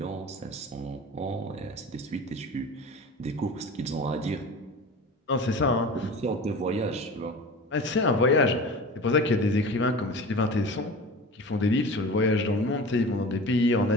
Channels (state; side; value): normal; both; correlation 0.35